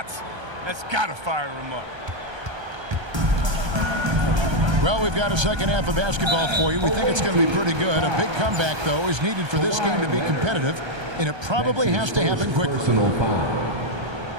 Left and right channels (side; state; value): left; late; 1.3 ms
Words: That's got to fire him up. Well, we've got a second half of basketball for you. We think it's going to be pretty good. A big comeback, though, is needed for this game to be competitive, and it probably has to happen quickly. Personal